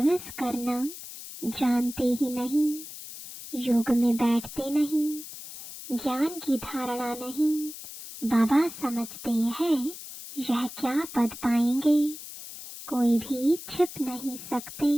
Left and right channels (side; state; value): left; noise; hiss, 12 dB below the sound